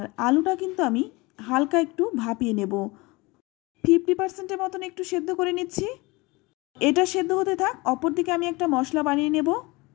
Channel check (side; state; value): right; quieter; 23.8 dB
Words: আলুটা কিন্তু আমি হালকা একটু ভাপিয়ে নেব, 50% মতন একটু সেদ্ধ করে নিচ্ছি। এটা সেদ্ধ হতে থাক, অপরদিকে আমি একটা মশলা বানিয়ে নেব।